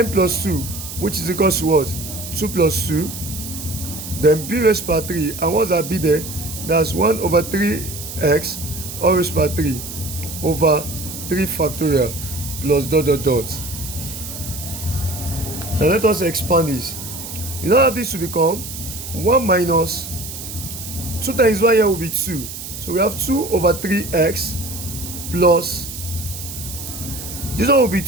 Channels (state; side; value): noise; right; hiss, 9 dB below the sound